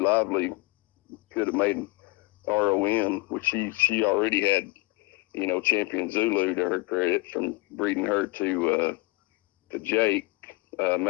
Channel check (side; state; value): right; quieter; 23.6 dB